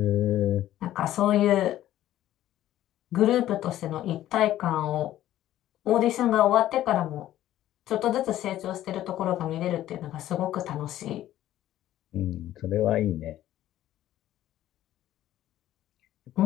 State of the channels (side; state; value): right; quieter; 13.3 dB